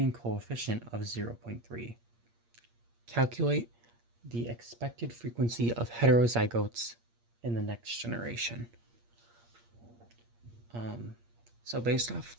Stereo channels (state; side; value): late; left; 8.6 ms